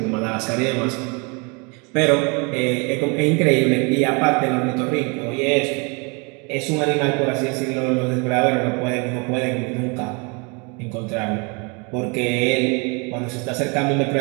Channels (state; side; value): quieter; left; 31.6 dB